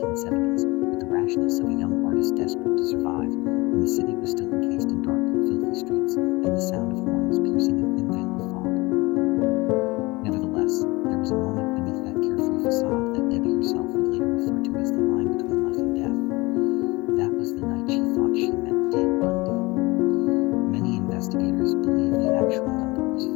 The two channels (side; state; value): right; quieter; 23.0 dB